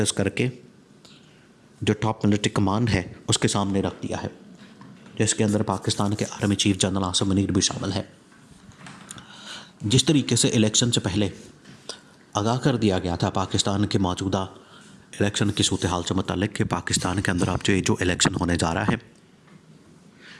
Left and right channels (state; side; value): identical; both; correlation 1.00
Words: करके जो टॉप मिलिट्री कमांड है उसके सामने रख दिया है, जिसके अंदर पाकिस्तान के army chief general Asim Munir भी शामिल है। जिस तरीके से इलेक्शन से पहले आगाह कर दिया गया था पाकिस्तान के मौजूदा इलेक्शन की सूरत हाल से मुताल्लिक़ कि पाकिस्तान के अंदर अब जो इलेक्शन होने जा रहा है,